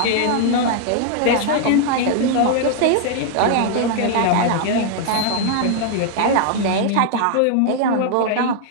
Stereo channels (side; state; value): both; different; correlation 0.00